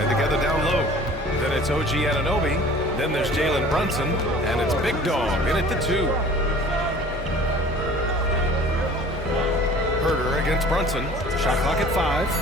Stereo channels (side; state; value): both; normal; correlation 0.46